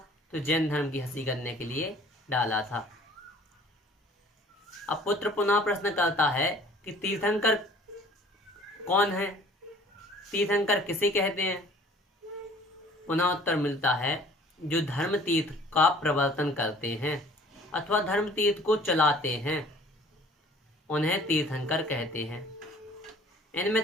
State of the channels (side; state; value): both; normal; correlation 0.52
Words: तो जैन धर्म की हंसी करने के लिए डाला था। अब पुत्र पुनः प्रश्न करता है कि तीर्थंकर कौन है, तीर्थंकर किसे कहते हैं? पुनः उत्तर मिलता है, जो धर्म तीर्थ का प्रवर्तन करते हैं अथवा धर्म तीर्थ को चलाते हैं, उन्हें तीर्थंकर कहते हैं। इनमें